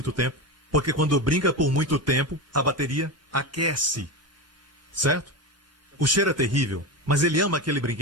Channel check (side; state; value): both; normal; correlation 0.19